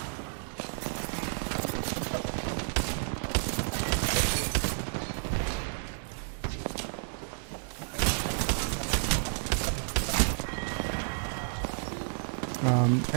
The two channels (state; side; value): silent; left; 57 dB below the other